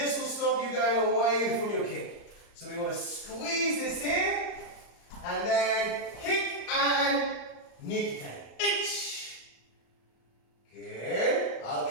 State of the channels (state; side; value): late; right; 34 ms